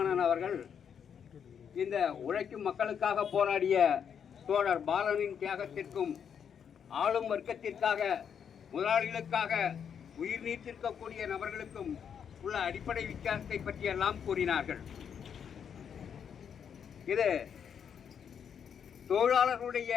அவர்கள் இந்த உழைக்கும் மக்களுக்காக போராடிய தோழர் பாலனின் தியாகத்திற்கும் ஆளும் வர்க்கத்திற்காக முதலாளிகளுக்காக உயிர் நீத்திருக்கக்கூடிய நபர்களுக்கும் உள்ள அடிப்படை வித்தியாசத்தை பற்றியெல்லாம் கூறினார்கள். இது தொழிலாளர்களுடைய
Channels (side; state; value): right; quieter; 7.7 dB